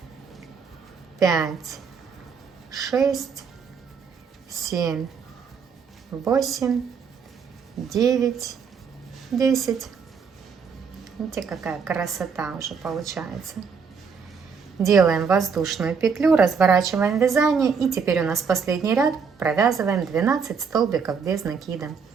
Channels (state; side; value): quieter; left; 5.9 dB